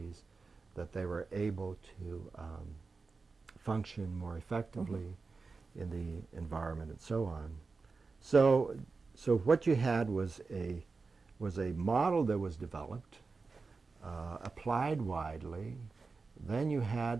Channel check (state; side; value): quieter; left; 4.3 dB